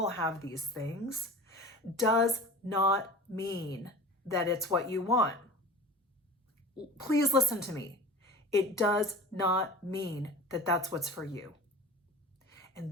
have these things, does not mean that it's what you want. Please listen to me. It does not mean that that's what's for you.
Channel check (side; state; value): both; normal; correlation 0.37